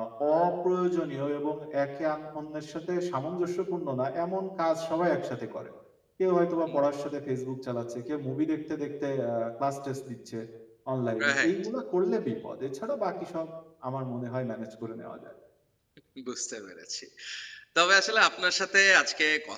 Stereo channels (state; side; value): identical; both; correlation 1.00